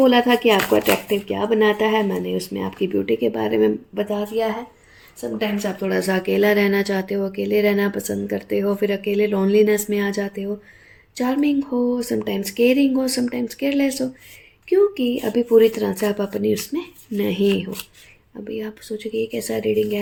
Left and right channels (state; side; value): identical; both; correlation 1.00